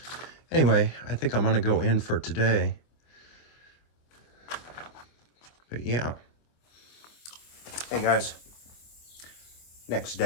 anyway, I think I'm gonna go in for today. But yeah. Hey guys, next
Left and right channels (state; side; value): late; right; 25 ms